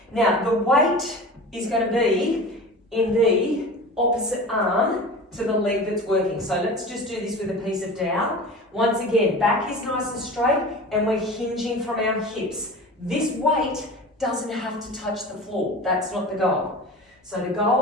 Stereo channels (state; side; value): normal; both; correlation 0.35